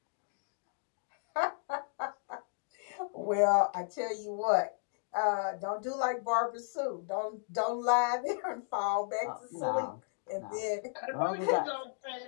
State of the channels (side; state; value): right; silent; digital silence